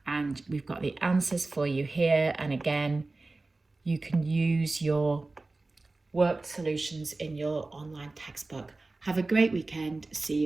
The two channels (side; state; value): left; quieter; 3.3 dB